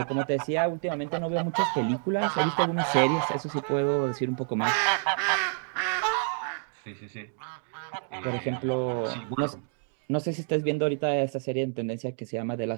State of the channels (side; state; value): left; silent; 59 dB below the other